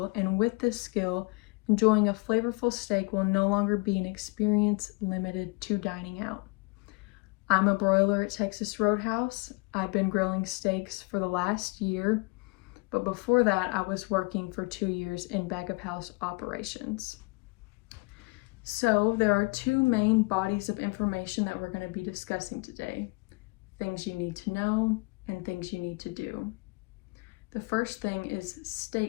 and with this skill, enjoying a flavorful steak will no longer be an experience limited to dining out. I'm a broiler at Texas Roadhouse. I've been grilling steaks for the last year, but before that, I was working for 2 years in back of house operations. So there are two main bodies of information that we're going to be discussing today. Things you need to know and things you need to do. The first thing is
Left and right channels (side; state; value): right; quieter; 27.9 dB